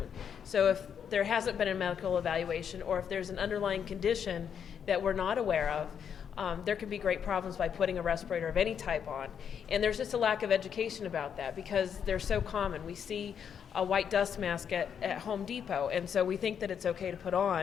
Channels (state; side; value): quieter; right; 7.8 dB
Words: So if there hasn't been a medical evaluation, or if there's an underlying condition that we're not aware of, there can be great problems by putting a respirator of any type on. And there's just a lack of education about that because they're so common. We see a white dust mask at Home Depot, and so we think that it's okay to put